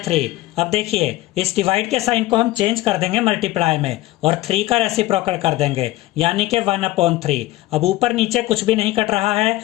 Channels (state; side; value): quieter; right; 17.6 dB